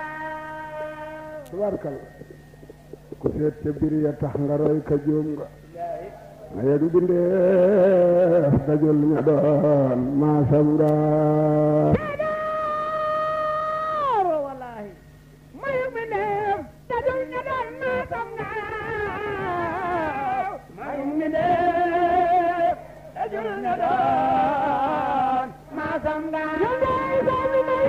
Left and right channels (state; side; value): identical; both; correlation 1.00